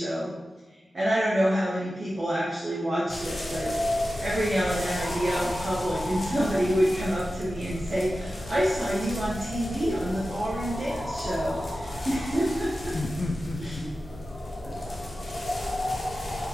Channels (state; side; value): normal; both; correlation 0.93